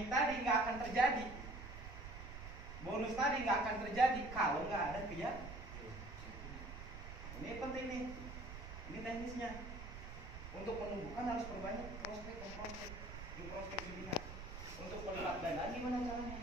tadi nggak akan terjadi, bonus tadi nggak akan terjadi kalau nggak ada keyakinan. Ini penting nih, ini teknisnya. Untuk menumbuhkan harus perbanyak prospek di prospek pembinaan. Untuk melipat gandaan gimana caranya?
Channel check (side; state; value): right; noise; rumble, 10 dB below the sound